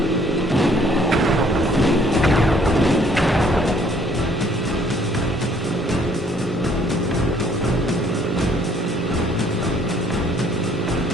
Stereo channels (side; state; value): both; normal; correlation 0.61